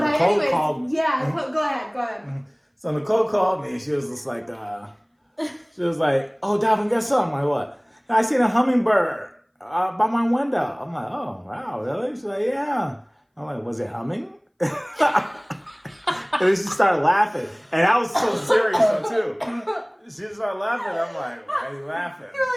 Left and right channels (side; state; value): both; identical; correlation 1.00